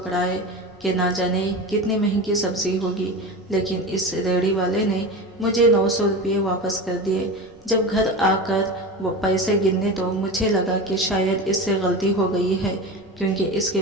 कि ना जाने कितनी महंगी सब्जी होगी, लेकिन इस रेहड़ी वाले ने मुझे 900 रुपये वापस कर दिए। जब घर आकर वो पैसे गिनने तो मुझे लगा कि शायद इससे गलती हो गई है, क्योंकि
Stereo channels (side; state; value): both; normal; correlation 0.27